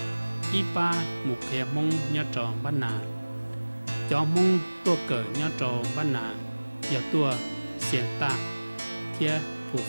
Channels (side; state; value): both; inverted; correlation -1.00